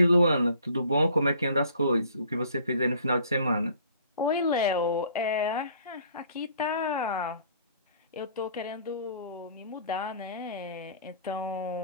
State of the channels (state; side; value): inverted; both; correlation -0.55